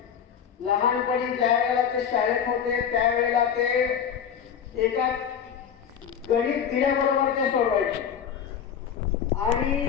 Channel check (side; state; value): right; quieter; 8.1 dB